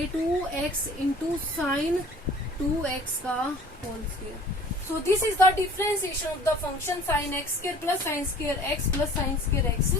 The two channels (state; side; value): normal; both; correlation 0.48